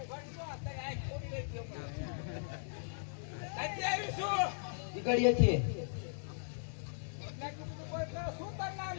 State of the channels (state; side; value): silent; right; digital silence